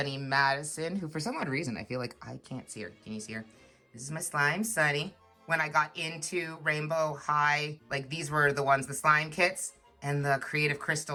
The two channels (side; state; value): both; identical; correlation 1.00